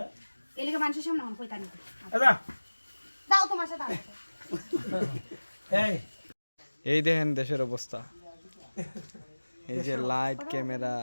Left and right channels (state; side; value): inverted; both; correlation -1.00